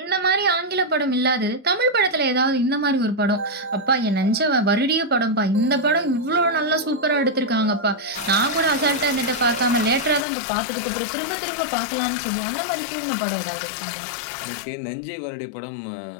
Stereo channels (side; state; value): right; drops out; at 10.2 s